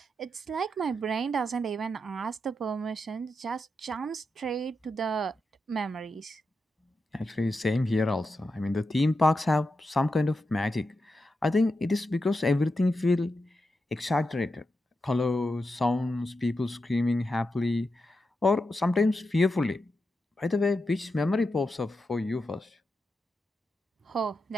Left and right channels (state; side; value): normal; both; correlation 0.87